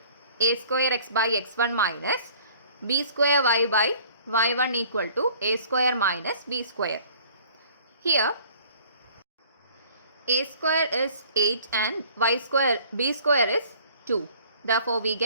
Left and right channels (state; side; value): inverted; both; correlation -0.53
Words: a square x by x1 minus b square y by y1 equal to a square minus b square. Here a square is 8 and b square is 2. Therefore, we